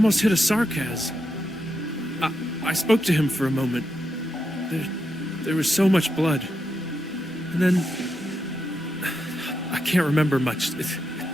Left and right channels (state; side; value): normal; both; correlation 0.84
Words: hit a sarcas. I spoke to him for a moment. There was so much blood. And then... I can't remember much.